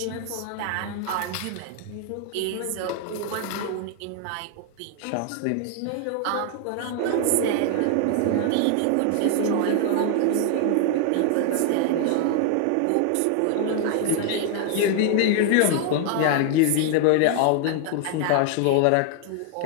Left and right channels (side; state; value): both; different; correlation 0.00